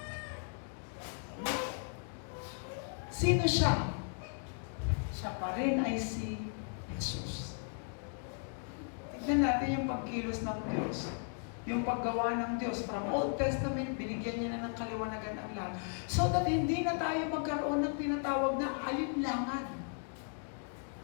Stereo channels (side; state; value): right; silent; 54 dB below the other